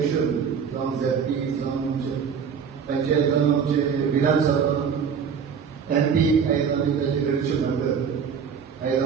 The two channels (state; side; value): quieter; left; 6.8 dB